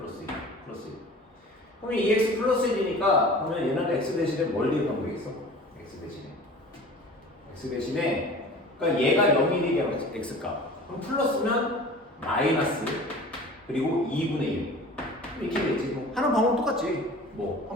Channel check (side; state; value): both; normal; correlation 0.42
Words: 1. 플러스 1. 그러면 2x 플러스 1이니까 그러면 얘는 x 대신에 뭘 대입하면 되겠어? x 대신에 그러니까 얘가 0이 되게 x값. 그럼 플러스면 마이너스 그리고 2분의 1 이렇게 되겠지. 뭐 하는 방법 똑같지. 뭐